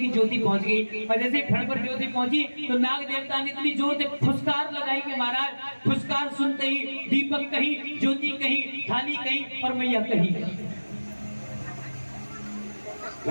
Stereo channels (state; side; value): inverted; both; correlation -1.00